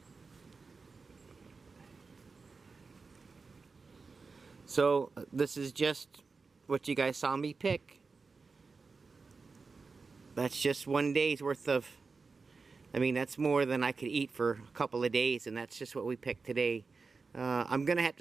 So this is just what you guys saw me pick. That's just one day's worth of, I mean, that's more than I could eat for a couple of days, and that's just what we picked today. I'm going to have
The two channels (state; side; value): quieter; left; 4.4 dB